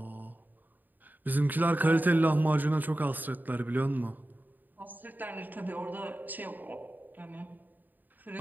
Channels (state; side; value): late; left; 0.087 ms